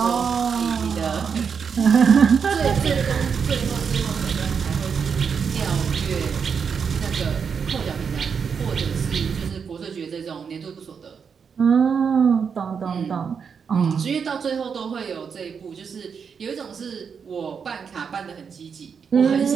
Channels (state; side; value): quieter; left; 6.4 dB